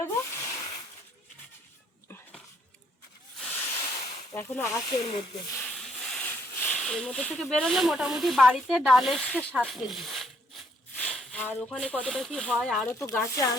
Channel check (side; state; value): both; normal; correlation 0.68